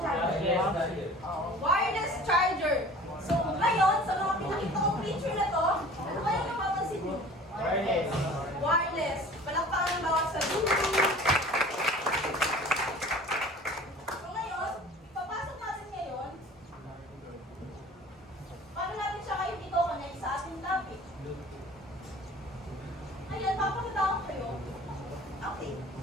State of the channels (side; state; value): both; normal; correlation 0.44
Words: Wireless charger. So, ngayon, sa mga pinakita kong picture na to, ano kaya napapansin mo? Wireless. Palakpakan ng bawat sabi. So ngayon, ipapasok natin ngayon, paano natin siya kayo dito connect sa ating topic? Ayan, papakita ko kayo. Okay.